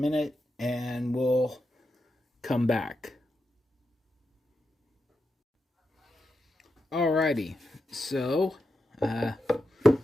and we'll come back. Alrighty, so a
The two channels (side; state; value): both; normal; correlation 0.87